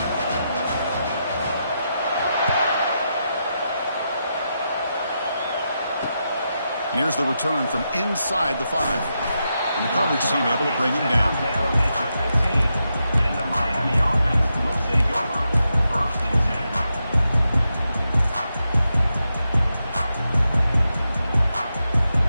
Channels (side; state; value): both; inverted; correlation -0.86